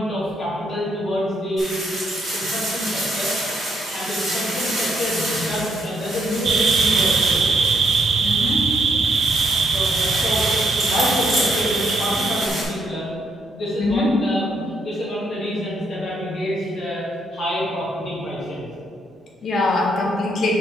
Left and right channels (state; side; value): normal; both; correlation 0.74